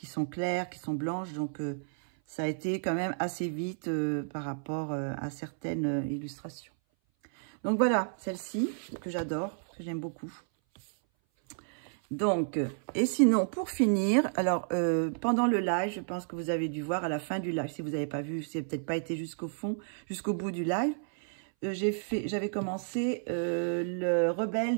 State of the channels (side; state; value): left; silent; 57 dB below the other